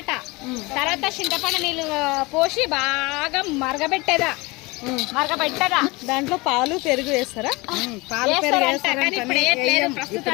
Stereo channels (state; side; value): quieter; right; 24.2 dB